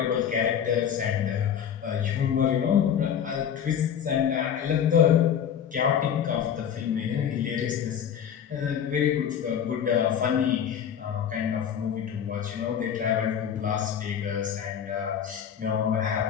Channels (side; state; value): right; quieter; 8.6 dB